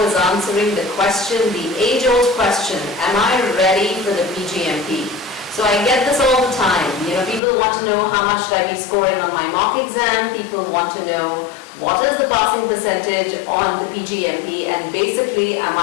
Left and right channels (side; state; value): right; drops out; at 7.4 s